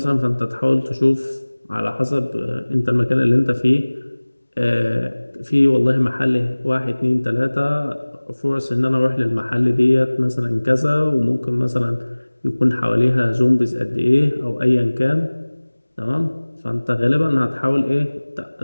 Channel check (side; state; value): both; inverted; correlation -1.00